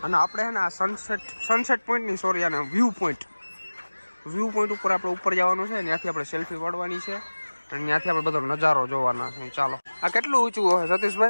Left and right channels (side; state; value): both; inverted; correlation -1.00